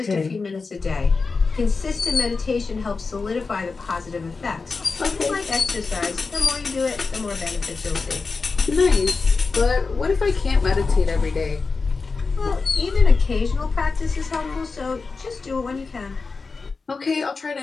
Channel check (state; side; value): quieter; right; 4.3 dB